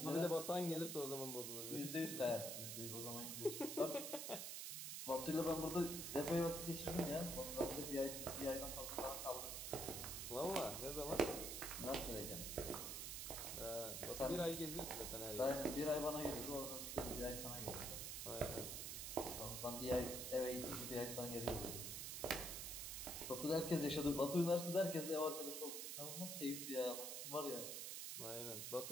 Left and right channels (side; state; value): right; noise; hiss, 4 dB below the sound